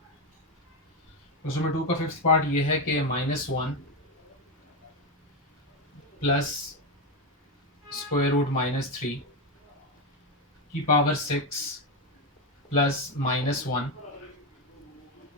क्वेश्चन नंबर 2 का फिफ्थ पार्ट ये है कि -1 प्लस स्क्वायर रूट -3 की power 6 plus -1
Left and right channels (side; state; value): both; normal; correlation 0.10